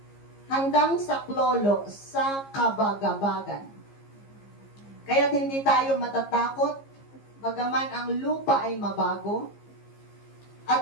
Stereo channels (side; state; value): right; late; 15 ms